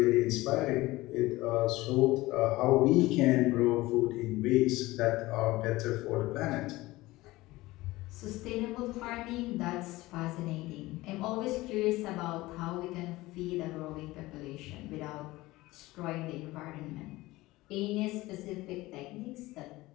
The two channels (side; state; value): right; quieter; 19.1 dB